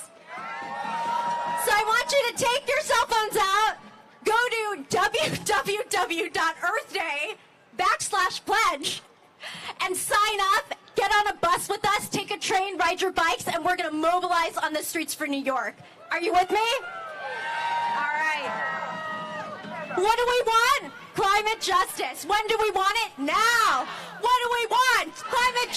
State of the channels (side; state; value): both; identical; correlation 1.00